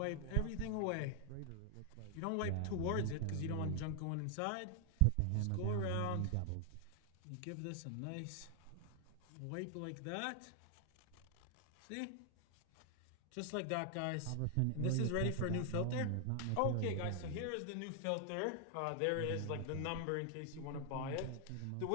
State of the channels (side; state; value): both; different; correlation 0.00